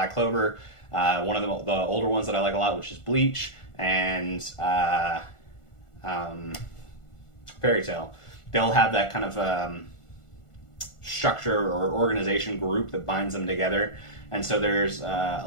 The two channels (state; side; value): late; right; 1.4 ms